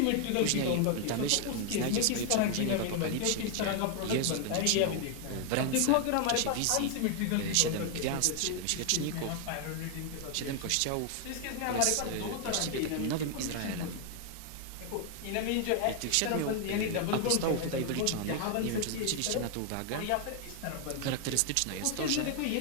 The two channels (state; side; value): different; both; correlation 0.00